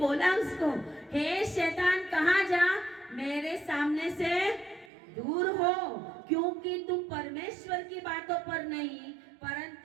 उसको, हे शैतान कहाँ जा, मेरे सामने से दूर हो, क्योंकि तू परमेश्वर की बातों पर नहीं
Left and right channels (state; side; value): drops out; left; at 4.9 s